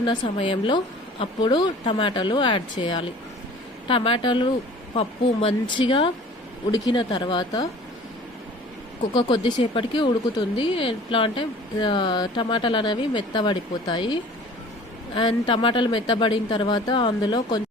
సమయంలో అప్పుడు టమాటాలు యాడ్ చేయాలి. టమాటాలు పప్పు మంచిగా ఉడికిన తర్వాత కొద్దిసేపటికి ఉడుకుతుంది. ఎట్లా అంటే టమాటాలు అనేవి మెత్తబడిపోతాయి. అండ్ టమాటాలు మెత్తబడిన తర్వాత అందులో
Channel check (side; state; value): both; normal; correlation 0.46